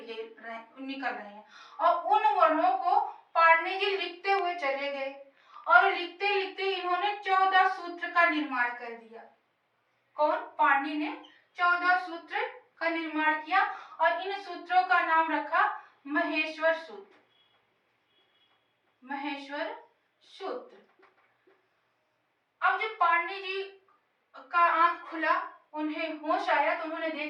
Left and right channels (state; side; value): identical; both; correlation 1.00